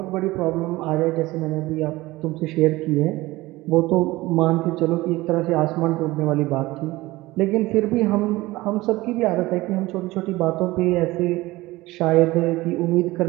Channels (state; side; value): quieter; left; 19.3 dB